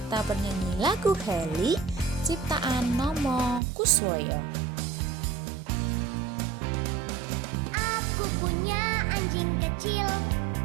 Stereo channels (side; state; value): left; drops out; at 3.6 s